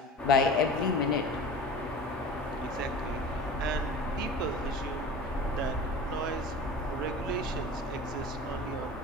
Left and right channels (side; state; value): both; normal; correlation 0.36